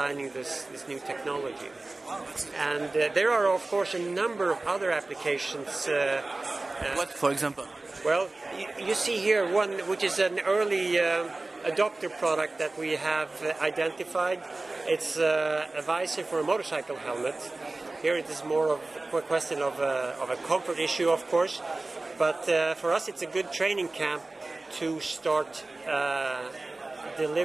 this new technology. And there are, of course, a number of other applications. What, for example? Well, you see here one which is an early adopter product that we have identified. It's a visor for a motorcycle helmet. Here it is more of a question of a comfort issue, of course, but for us it's a good training camp to start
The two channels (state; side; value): quieter; left; 3.1 dB